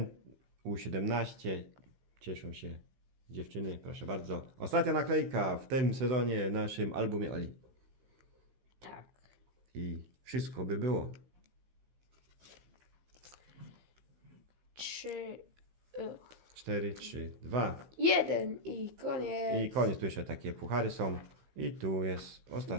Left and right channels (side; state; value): left; late; 15 ms